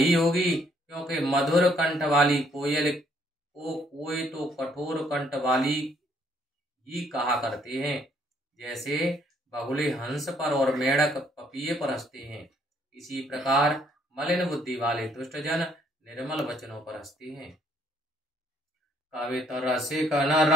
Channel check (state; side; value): normal; both; correlation 0.67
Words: होगी, क्योंकि मधुर कंठ वाली कोयल को कोई तो कठोर कंठ वाली ही कहा करते हैं, जैसे बगुले हंस पर और मेढक पपीहे पर हंसते हैं, इसी प्रकार मलिन बुद्धि वाले दुष्टजन निर्मल वचनों पर हंसते हैं। कवित रसिक न